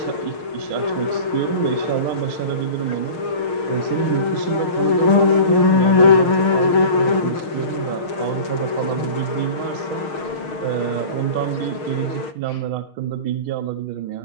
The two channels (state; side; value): late; right; 6.5 ms